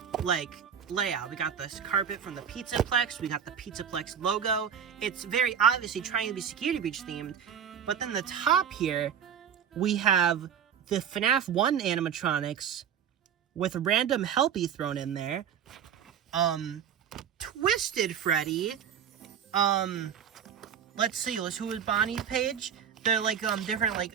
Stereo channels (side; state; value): left; quieter; 8.1 dB